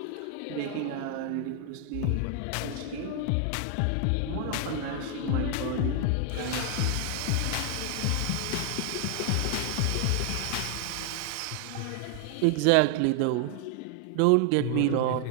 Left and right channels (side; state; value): both; different; correlation 0.00